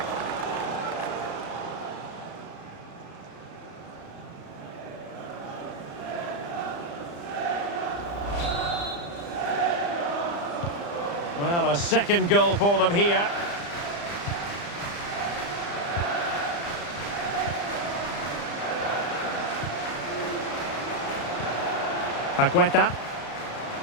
Well, a second goal for them here. Paqueta.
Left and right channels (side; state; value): right; late; 35 ms